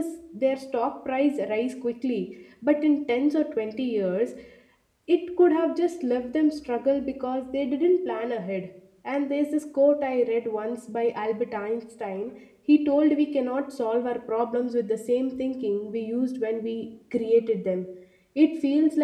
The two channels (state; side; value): identical; both; correlation 1.00